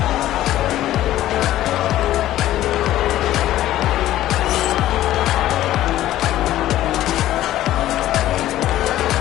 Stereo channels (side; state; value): right; quieter; 13.9 dB